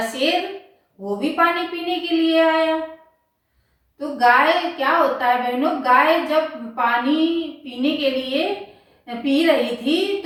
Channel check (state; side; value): identical; both; correlation 1.00